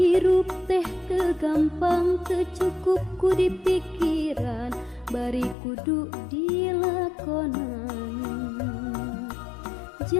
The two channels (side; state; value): right; drops out; at 5.6 s